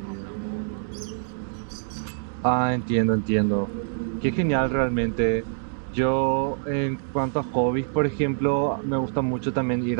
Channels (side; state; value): left; silent; digital silence